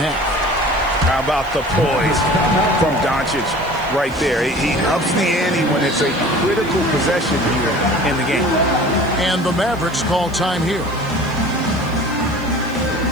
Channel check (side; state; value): right; noise; hiss, 24 dB below the sound